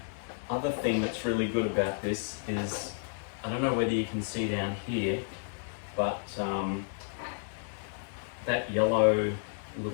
other thing that's really good about this is, I don't know whether you can see down here, but that yellow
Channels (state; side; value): silent; right; digital silence